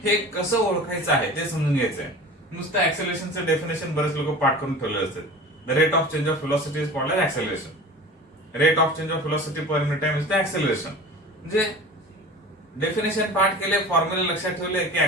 हे कसं ओळखायचं आहे ते समजून घ्यायचं आहे. नुसतं ऍक्सेलरेशनचं डेफिनेशन बरेच लोक पाठ करून ठेवले असतात. The rate of change of velocity is called as acceleration. Rate of change of velocity per unit time is the acceleration. म्हणजे डेफिनेशन पाठ केले, फॉर्म्युला लक्षात ठेवले की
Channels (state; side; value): normal; both; correlation 0.37